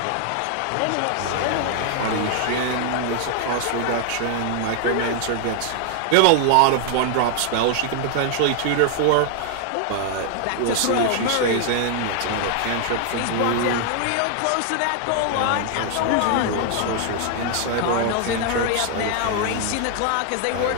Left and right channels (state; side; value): different; both; correlation 0.00